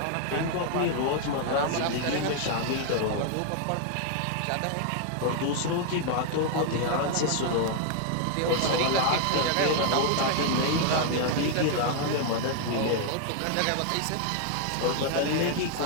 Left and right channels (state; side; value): different; both; correlation 0.00